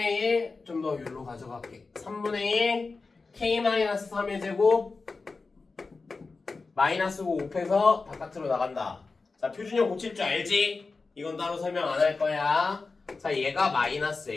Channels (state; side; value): quieter; right; 4.1 dB